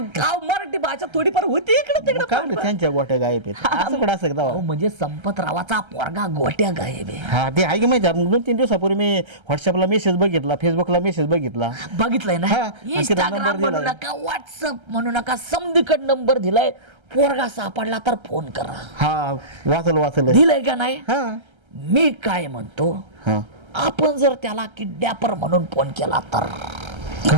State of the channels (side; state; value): left; late; 1.3 ms